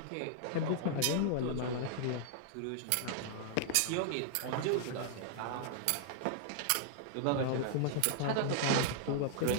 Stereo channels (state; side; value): different; both; correlation -0.01